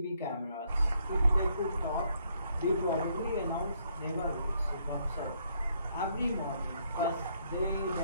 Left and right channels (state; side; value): inverted; both; correlation -0.71